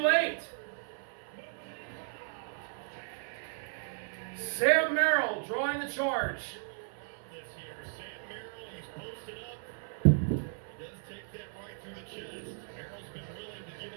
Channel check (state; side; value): silent; left; 54 dB below the other